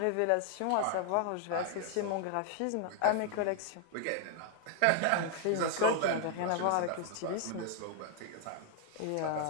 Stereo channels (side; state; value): both; different; correlation 0.00